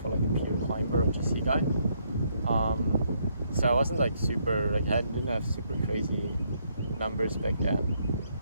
like a pure climber or GC guy. So I wasn't like super, like I didn't have super crazy numbers back then.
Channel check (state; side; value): inverted; both; correlation -0.73